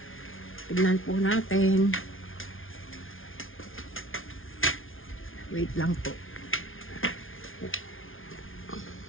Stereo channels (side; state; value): right; late; 0.58 ms